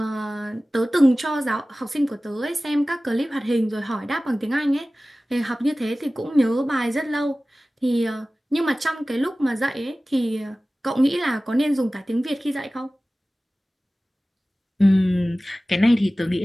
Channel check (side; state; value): both; normal; correlation 0.97